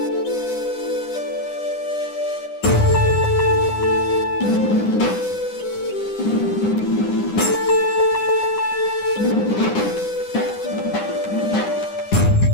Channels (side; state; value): right; late; 9.8 ms